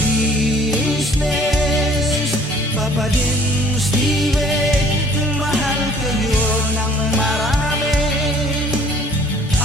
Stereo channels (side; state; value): both; normal; correlation 0.56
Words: Papa din Steve, mahal kayo ng marami.